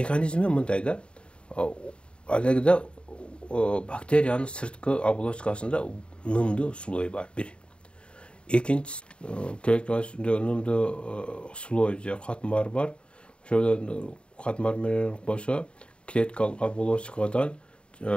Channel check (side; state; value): right; late; 0.055 ms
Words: мындай да. Алегде бактериянын сырткы оболочкасында нымдуу слой бар, бир. Экинчиси клеткасында нымдуу слой же катмар бар. Ошол катмар менен кошо клеткалык оболочкадан